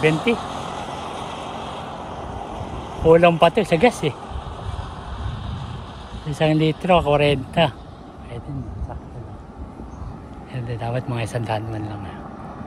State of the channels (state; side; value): identical; both; correlation 1.00